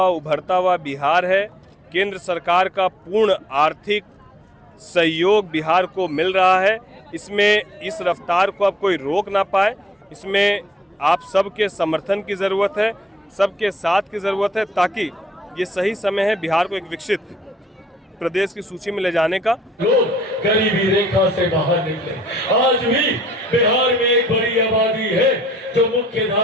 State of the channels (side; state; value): both; normal; correlation 0.69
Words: उभरता हुआ बिहार है। केंद्र सरकार का पूर्ण आर्थिक सहयोग बिहार को मिल रहा है। इसमें इस रफ्तार को अब कोई रोक ना पाए। इसमें आप सबके समर्थन की ज़रूरत है, सबके साथ की ज़रूरत है, ताकि ये सही समय है बिहार को एक विकसित प्रदेश की सूची में ले जाने का। लोग गरीबी रेखा से बाहर निकले। आज भी बिहार में एक बड़ी आबादी है जो मुख्य